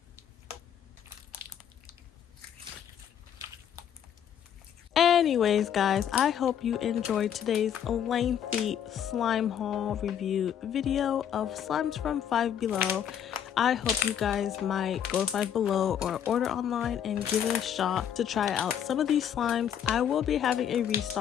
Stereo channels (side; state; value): right; quieter; 9.2 dB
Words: Anyways, guys, I hope you enjoyed today's lengthy slime haul review video of slimes from Five Below. I hope you guys might go to Five Below or order online and give it a shot to try out some of these slimes. I will be having a